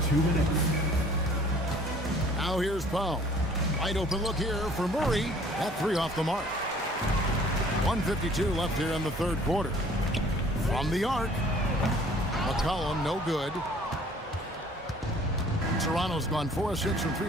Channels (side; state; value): both; normal; correlation 0.54